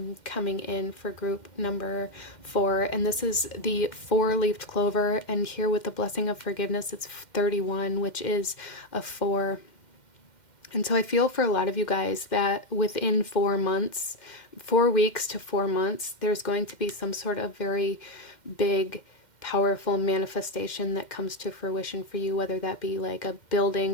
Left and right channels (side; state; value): right; late; 2.1 ms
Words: coming in for group number 4. And this is the 4-leafed clover, and here with the blessing of forgiveness, it's 31, which is a 4. And so I feel for a lot of you guys that within 4 months, 4 weeks to 4 months, there's going to be some sort of very big, powerful manifestation that comes to fruition for you, whether that be like a building